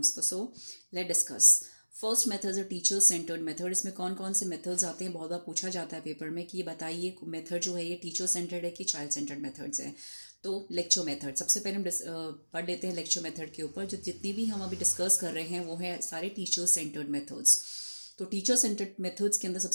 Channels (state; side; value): inverted; both; correlation -1.00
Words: So let's discuss. First method है टीचर सेंटर्ड मेथड. इसमें कौन कौन से मेथड्स आते हैं बहुत बार पूछा जाता है पेपर में कि ये बताइए मेथड जो है ये टीचर सेंटर्ड है कि चाइल्ड सेंटर्ड मेथड्स हैं. तो लेक्चर मेथड सबसे पहले हम पढ़ लेते हैं लेक्चर मेथड के ऊपर. जो जितनी भी हम अभी डिस्कस कर रहे हैं वो है सारे टीचर सेंटर्ड मेथड्स. तो टीचर सेंटर्ड मेथड्स के अंदर